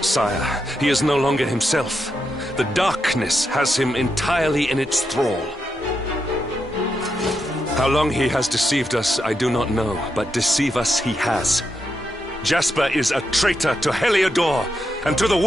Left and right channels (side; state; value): both; normal; correlation 0.84